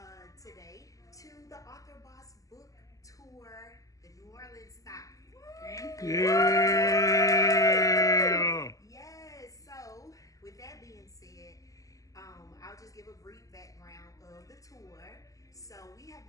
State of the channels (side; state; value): right; late; 0.17 ms